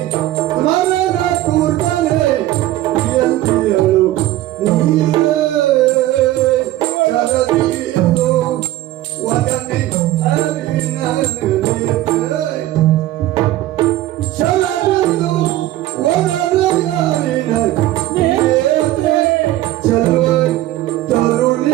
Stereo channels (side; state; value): left; quieter; 15.0 dB